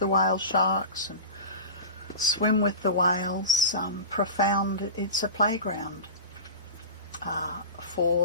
whale sharks and swim with the whales. Profound. It's a playground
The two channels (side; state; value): both; inverted; correlation -0.30